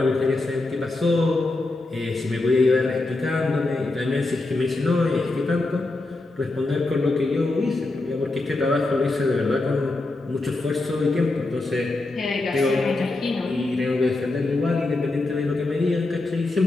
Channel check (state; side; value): quieter; right; 3.1 dB